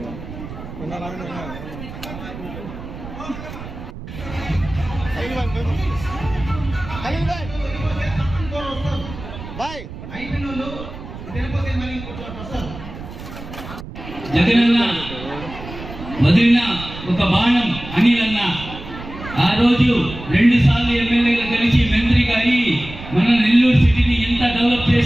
జగనన్న వదిలిన ఒక బాణం అనిలన్న ఆ రోజు 2 సార్లు ఎమ్మెల్యేగా కలిసి మంత్రిగా అయి మన నెల్లూరు సిటీని ఎంత డెవలప్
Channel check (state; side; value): noise; right; rumble, 12 dB below the sound